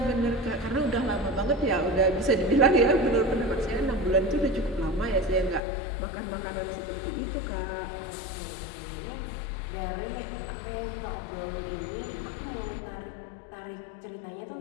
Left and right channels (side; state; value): right; drops out; at 5.6 s